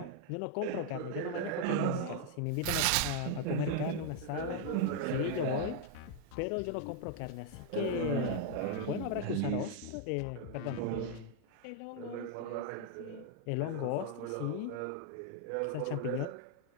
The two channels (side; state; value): both; different; correlation 0.00